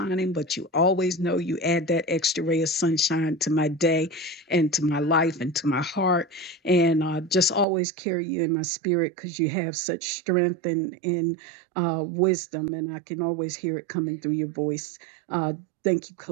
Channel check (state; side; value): drops out; left; at 7.7 s